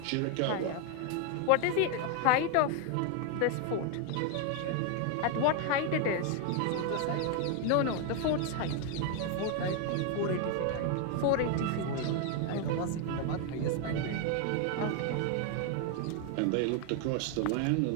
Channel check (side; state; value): both; different; correlation 0.00